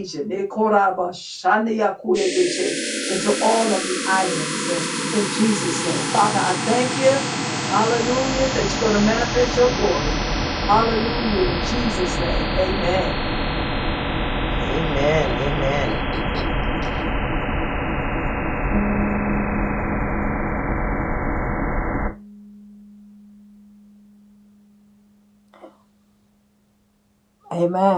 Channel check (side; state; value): both; identical; correlation 1.00